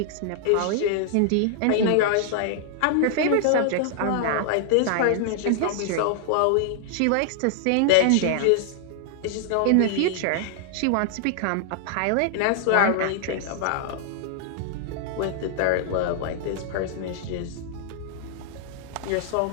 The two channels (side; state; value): both; different; correlation -0.01